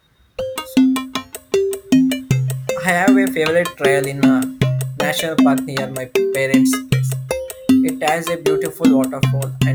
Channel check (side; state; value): both; identical; correlation 1.00